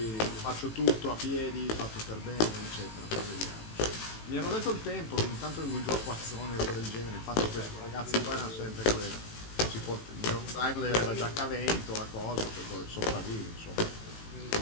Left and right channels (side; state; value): right; late; 18 ms